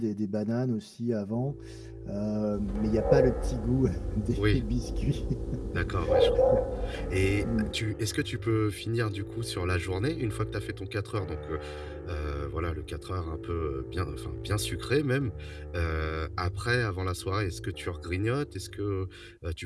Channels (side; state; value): both; identical; correlation 1.00